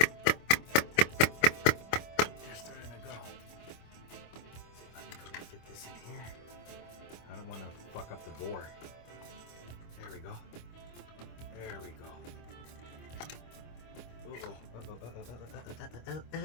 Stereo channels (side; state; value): right; late; 25 ms